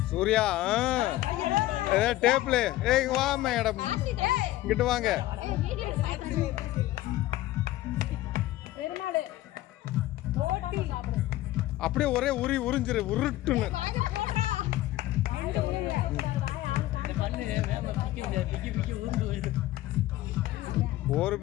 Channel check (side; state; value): right; quieter; 15.7 dB